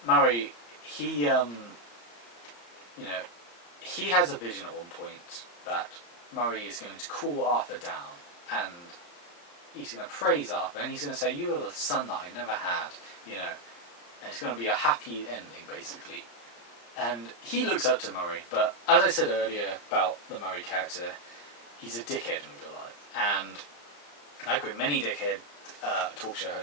Maury, he, you know, he has a vision at one point that Murray is going to cool Arthur down, and he's going to praise Arthur, and he's going to say, "You are the son that I never had," you know, and it's going to be a happy ending, basically. And he looks up to Murray, but as I said earlier about the Murray character, he's a dickhead in real life, and like with many dickhead talk show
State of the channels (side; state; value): right; late; 34 ms